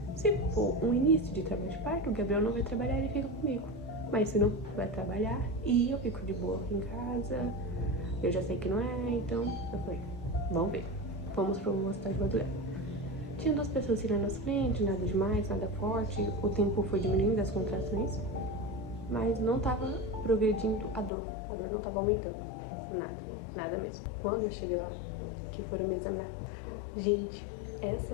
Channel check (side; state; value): right; drops out; at 21.1 s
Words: Se for um início de trabalho de parto, o Gabriel não vai trabalhar, ele fica comigo. Mas se não, vai trabalhar e eu fico de boa aqui em casa. Eu já sei que não é, então eu falei, vamos ver. Fomos pro hospital de madrugada. Tinha 2 pessoas assim na nossa frente, nada demais, nada forte. O tempo foi diminuindo as contrações, mas não tava progredindo a dor. A dor não tava aumentando. Nada mesmo. Quando eu cheguei lá, que foram me examinar, gente,